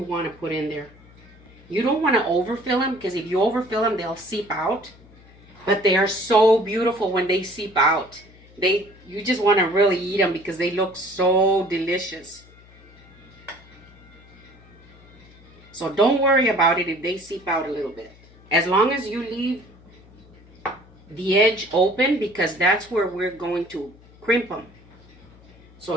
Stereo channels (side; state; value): left; noise; hum, 25 dB below the sound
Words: want to put in there. You don't want to overfill them, because if you overfill them, they'll seep out. But they are so beautiful when they seep out. You just want to really eat them because they look so delicious. So don't worry about it if they seep out a little bit. As long as you leave the edge open, because that's where we're going to crimp them. So